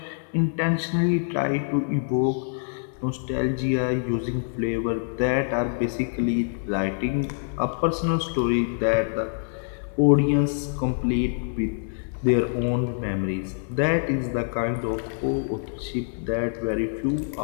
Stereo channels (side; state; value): right; silent; 61 dB below the other